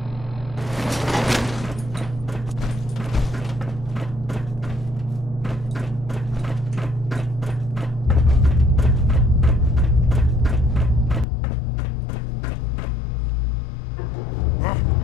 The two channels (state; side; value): drops out; right; at 11.2 s